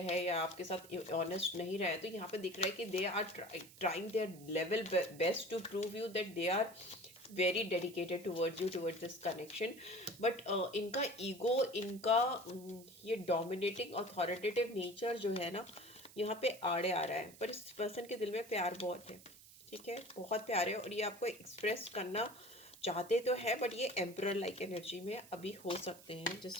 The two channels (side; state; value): right; noise; hiss, 20 dB below the sound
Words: हैं या आपके साथ ऑनेस्ट नहीं रहे, तो यहाँ पे दिख रहा है कि they are trying their level best to prove you that they are very dedicated towards you, towards this connection. But इनका ईगो, इनका ये डोमिनेटिंग अथॉरिटेटिव नेचर जो है ना, यहाँ पे आड़े आ रहा है। पर इस पर्सन के दिल में प्यार बहुत है, ठीक है, बहुत प्यार है, और ये आपको एक्सप्रेस करना चाहते तो है, बट ये एम्परर लाइक एनर्जी में अभी हो सकते हैं,